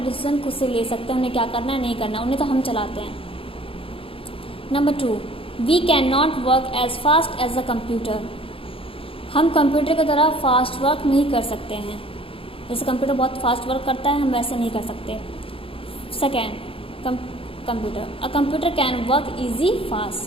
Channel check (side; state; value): right; late; 0.27 ms